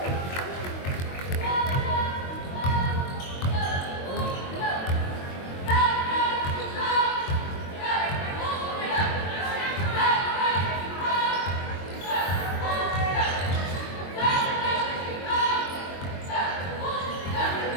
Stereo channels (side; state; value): right; late; 22 ms